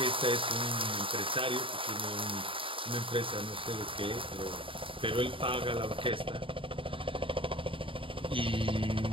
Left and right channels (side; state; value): left; late; 0.25 ms